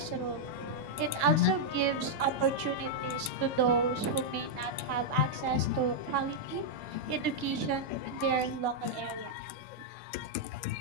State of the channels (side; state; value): left; late; 2.1 ms